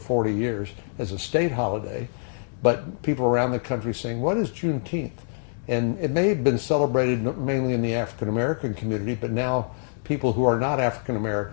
years as a state holiday. But people around the country saying, what is Juneteenth? And it may have been celebrated mainly in the African American community, but now people who are not African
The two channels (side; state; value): right; silent; 62 dB below the other